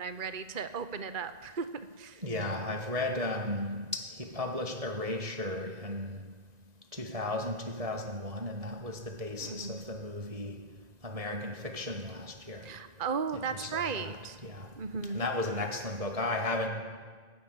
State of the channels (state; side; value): late; left; 1.9 ms